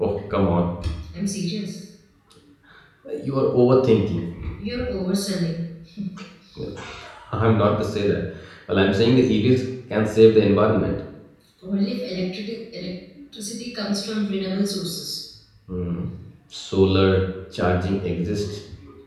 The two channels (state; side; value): identical; both; correlation 1.00